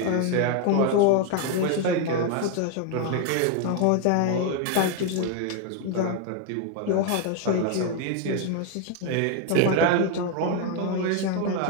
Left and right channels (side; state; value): both; different; correlation 0.01